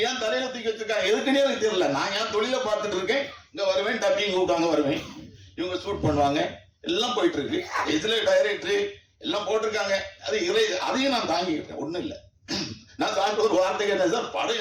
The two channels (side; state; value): both; identical; correlation 1.00